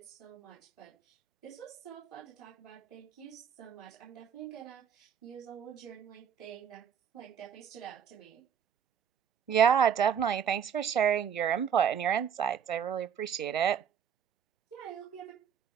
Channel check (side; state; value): left; quieter; 8.2 dB